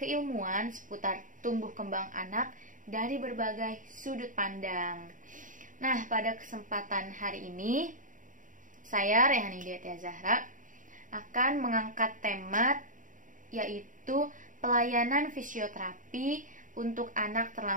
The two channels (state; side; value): late; left; 0.38 ms